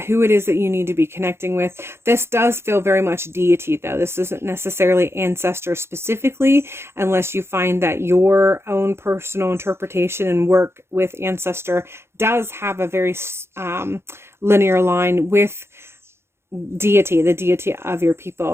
it is that you need to be connecting with. This does feel very much deity, though. This isn't necessarily ancestor specifically, unless you find that your own personal interpretation and work with ancestor does have a very linear line with deity, the deity of your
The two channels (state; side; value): late; left; 0.12 ms